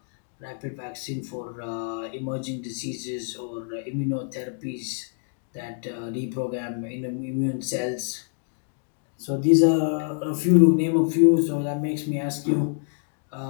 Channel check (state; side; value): silent; right; 61 dB below the other